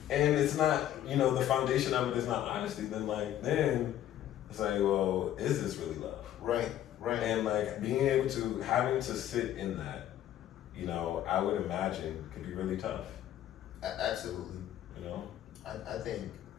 and it's not, you know, the foundation of it is not honesty, then it's like, well, is this really love? Right. Right. And like being able to having to sit in that, you know, I would imagine could be really tough. Absolutely. You know, I think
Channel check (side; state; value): right; quieter; 11.9 dB